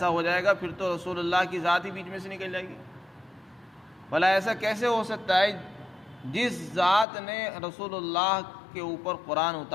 ہو جائے گا پھر تو رسول اللہ کی ذات ہی بیچ میں سے نکل جائے گی۔ بھلا ایسا کیسے ہو سکتا ہے جس ذات نے رسول اللہ کے اوپر قرآن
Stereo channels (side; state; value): right; drops out; at 7.1 s